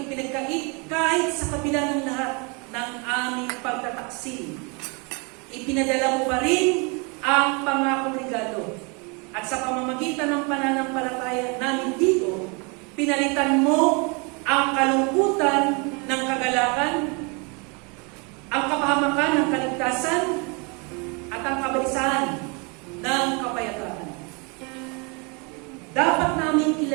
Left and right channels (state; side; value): quieter; left; 32.1 dB